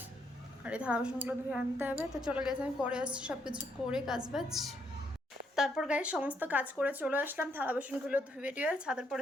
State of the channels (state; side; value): normal; both; correlation 0.74